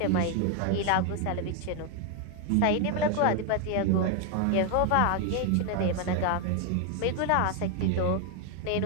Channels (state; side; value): different; both; correlation 0.01